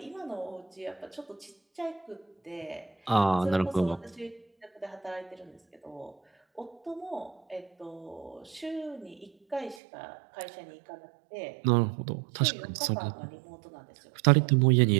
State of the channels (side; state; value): left; drops out; at 9.8 s